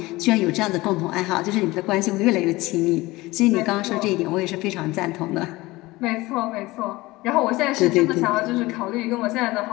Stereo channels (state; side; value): quieter; right; 20.2 dB